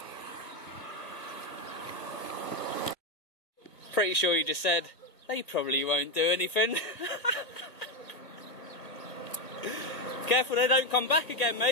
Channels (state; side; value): late; right; 1.4 ms